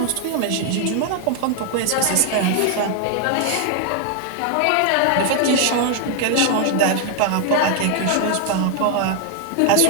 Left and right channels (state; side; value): different; both; correlation 0.00